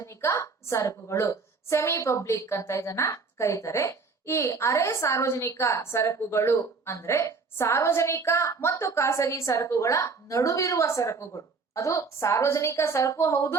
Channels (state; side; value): quieter; left; 4.6 dB